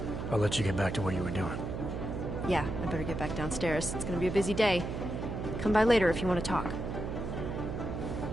I'll let you get back to what you were doing. Yeah, I better get back downstairs. It's gonna be a busy day. Come by later if you want to talk.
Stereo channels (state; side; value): noise; right; hum, 5 dB below the sound